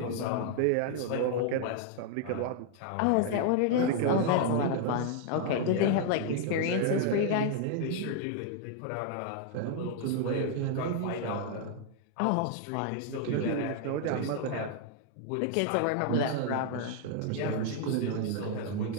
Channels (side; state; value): both; different; correlation 0.00